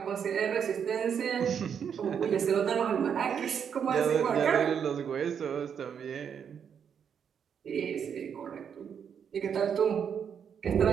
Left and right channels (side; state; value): left; quieter; 7.6 dB